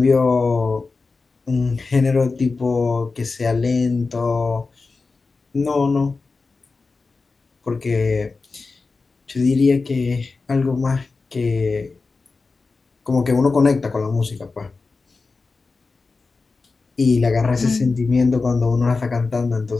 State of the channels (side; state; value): right; quieter; 4.1 dB